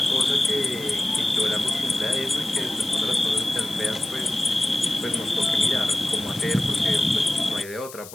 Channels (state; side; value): noise; left; hiss, 16 dB below the sound